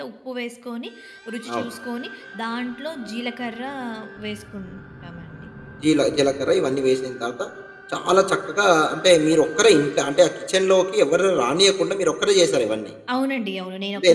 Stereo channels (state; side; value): identical; both; correlation 1.00